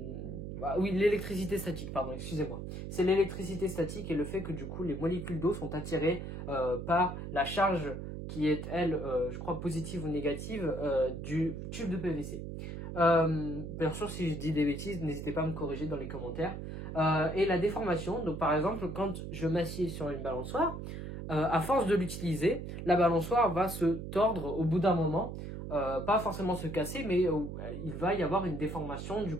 Oui, l'électricité statique, pardon, excusez-moi. C'est l'électricité statique et le fait que du coup les molécules d'eau sont attirées par la charge qui est, elle, je crois positive ou négative du tube de PVC. Bien sûr, si je dis des bêtises, n'hésitez pas à me corriger dans les commentaires. Et la déformation, donc par exemple, quand je m'assieds sur une balançoire, à force de l'utiliser, la balançoire va se tordre au bout d'un moment. Pas forcément se casser, mais il va y avoir une déformation du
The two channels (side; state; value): right; noise; hum, 7 dB below the sound